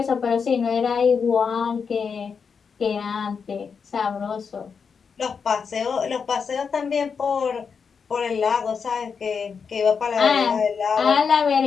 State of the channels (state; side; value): quieter; right; 6.0 dB